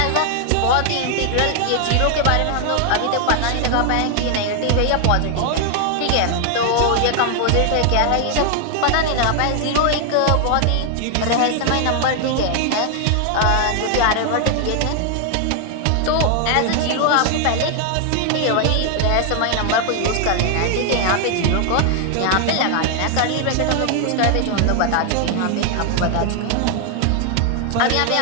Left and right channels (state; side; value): different; both; correlation 0.00